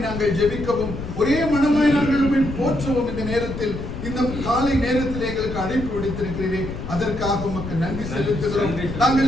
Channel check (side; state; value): left; noise; rumble, 7 dB below the sound